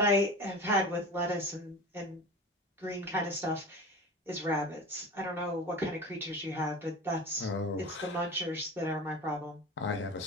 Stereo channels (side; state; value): both; normal; correlation 0.33